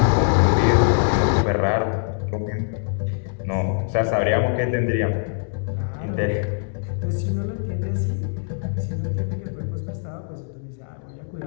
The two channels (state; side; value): silent; right; digital silence